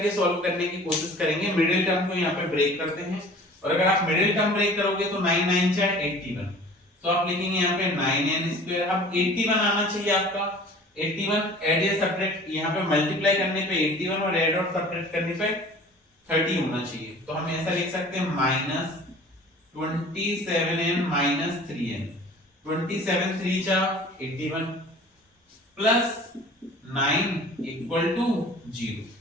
सॉल्व करने की कोशिश करेंगे। मिडिल टर्म को यहाँ पे ब्रेक करते हैं, और अगर आप मिडिल टर्म ब्रेक करोगे तो 9 9 जा 81, तो आप लिखेंगे यहाँ पे 9n स्क्वायर। अब 81 आना चाहिए आपका, 81 ऐड या सब्ट्रैक्ट, यहाँ पे मल्टीप्लाई करने पे 81 और ऐड और सब्ट्रैक्ट करने पे 30 होना चाहिए। तो हम ऐसा लिख सकते हैं माइनस 27n माइनस 3n, 27 3 जा 81 प्लस 9 इक्वल टू 0।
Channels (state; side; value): normal; both; correlation 0.45